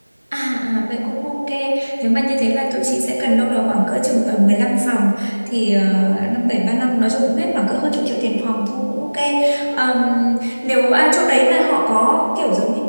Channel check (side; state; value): both; inverted; correlation -1.00